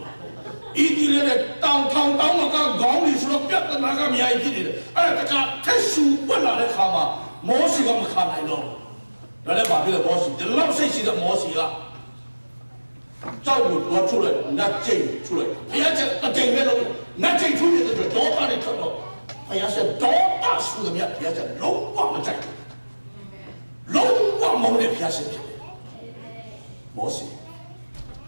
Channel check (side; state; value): both; inverted; correlation -1.00